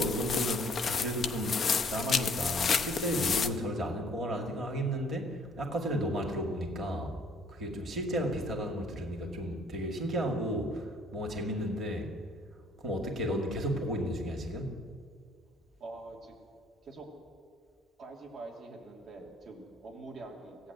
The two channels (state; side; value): normal; both; correlation 0.60